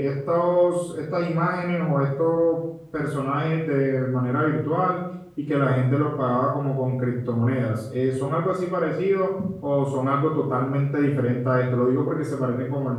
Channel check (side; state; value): both; identical; correlation 1.00